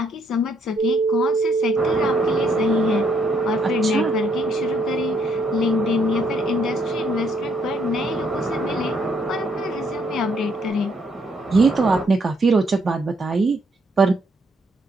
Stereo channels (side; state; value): both; normal; correlation 0.71